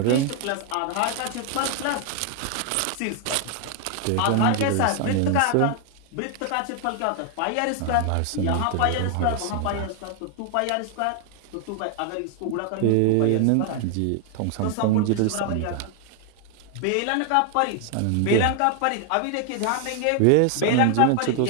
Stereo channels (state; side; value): different; both; correlation 0.00